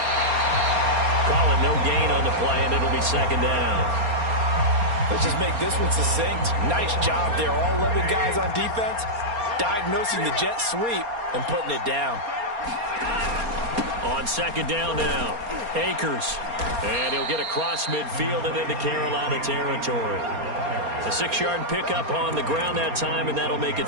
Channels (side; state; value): left; late; 4.3 ms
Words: Call it no gain on the play, and it'll be 2nd down. Let's just make this one succinct. Nice job there. All 11 guys on defense diagnosing the jet sweep and putting it down. On 2nd down now, Akers. And he'll get across midfield and into Carolina territory. A 6-yard pickup on the ground that time, and that'll make it